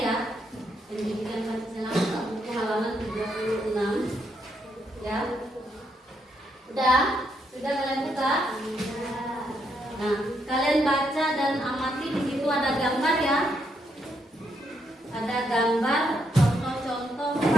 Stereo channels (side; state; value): both; normal; correlation 0.77